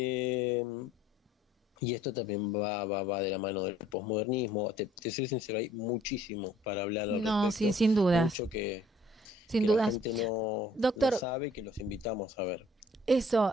Y esto también va de la mano del posmodernismo. Te soy sincero, hay muchísimo para hablar al No, sí, respecto, sin dudas, mucho sin que la dudas. gente no Doctor, sabe y que los invitamos a ver. eso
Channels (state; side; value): normal; both; correlation 0.57